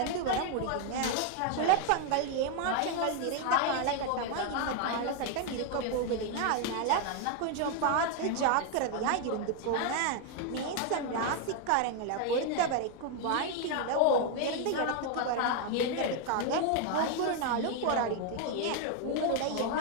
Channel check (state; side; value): different; both; correlation 0.00